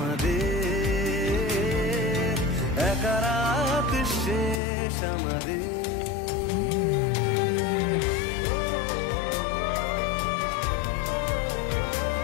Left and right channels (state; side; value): drops out; right; at 4.6 s